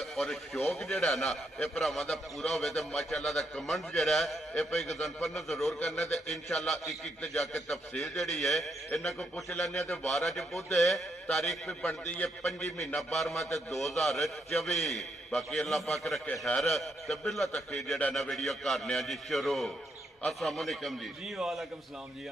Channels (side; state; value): both; normal; correlation 0.77